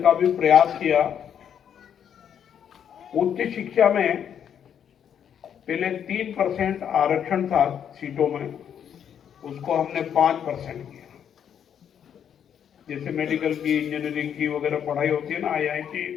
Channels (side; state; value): right; quieter; 8.7 dB